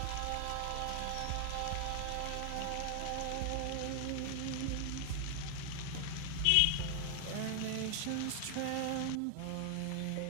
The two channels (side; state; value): both; different; correlation 0.00